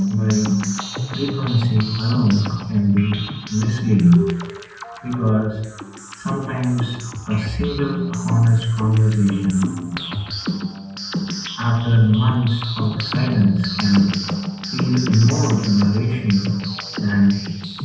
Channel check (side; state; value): both; identical; correlation 1.00